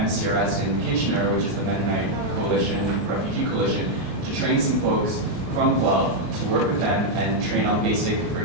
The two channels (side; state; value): left; late; 33 ms